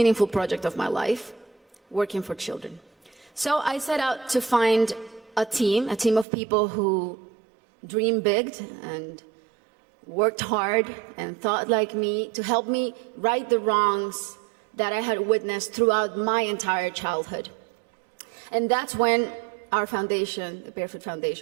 project of my life, working for children. So I set out to find a team of people who dreamed big and worked hard and thought like me to help me right the wrongs that I had witnessed throughout my entire childhood. And that's when our foundation, the Barefoot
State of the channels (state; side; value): drops out; left; at 6.2 s